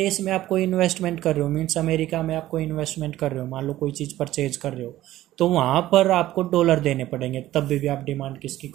में आप कोई इन्वेस्टमेंट कर रहे हो, मीन्स अमेरिका में आप कोई इन्वेस्टमेंट कर रहे हो, मान लो कोई चीज़ परचेज कर रहे हो, तो वहाँ पर आपको डॉलर देने पड़ेंगे, तब भी आप डिमांड किसकी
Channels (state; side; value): quieter; left; 14.8 dB